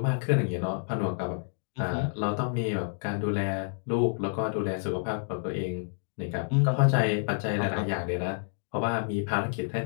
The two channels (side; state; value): right; silent; digital silence